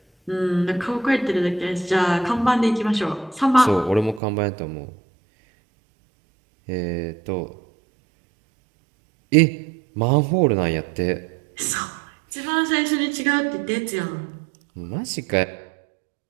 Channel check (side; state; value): left; drops out; at 4.2 s